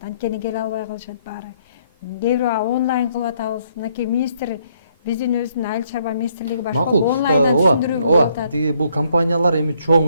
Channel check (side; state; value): both; inverted; correlation -0.69